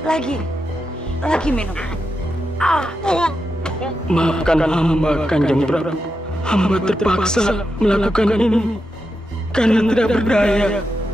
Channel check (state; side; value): normal; both; correlation 0.87